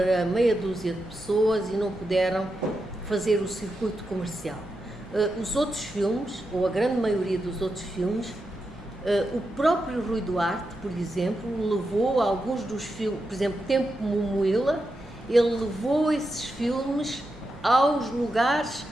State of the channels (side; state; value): both; normal; correlation 0.87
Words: meia dúzia de pessoas e não puderam fazer o circuito comercial. Os outros filmes, ou a grande maioria dos outros filmes, o próprio Rui Duarte, por exemplo, levou alguns dos filmes, por exemplo, Tempo Momoila, ele levou esses filmes aos lugares